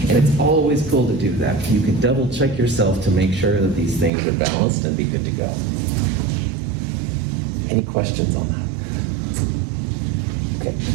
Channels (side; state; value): left; drops out; at 4.1 s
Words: And it's always cool to do that. You can double check yourself to make sure that these things are balanced and be good to go. Any questions on that? Okay.